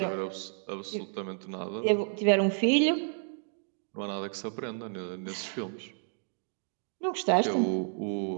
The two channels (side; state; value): left; silent; 57 dB below the other